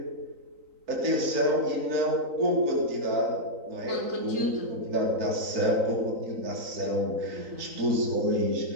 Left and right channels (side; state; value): left; late; 3.9 ms